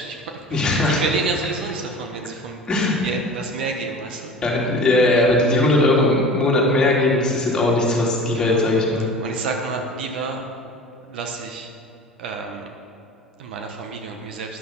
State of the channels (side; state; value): both; normal; correlation 0.38